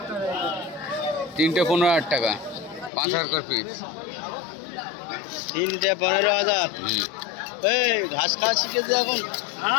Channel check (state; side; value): drops out; right; at 2.9 s